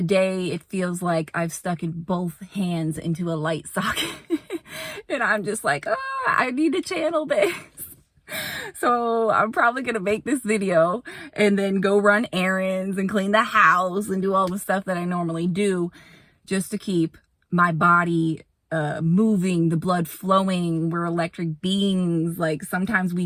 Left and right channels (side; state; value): both; identical; correlation 1.00